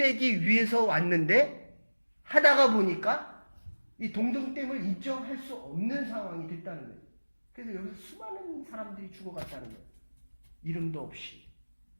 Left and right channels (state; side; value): inverted; both; correlation -1.00